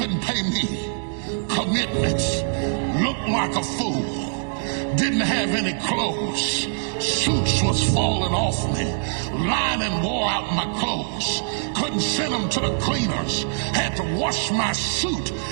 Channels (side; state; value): left; silent; digital silence